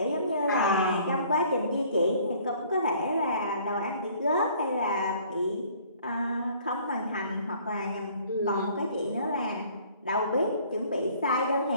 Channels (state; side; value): inverted; both; correlation -0.56